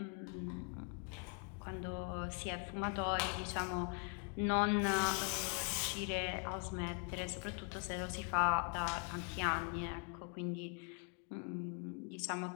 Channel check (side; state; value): right; quieter; 38.7 dB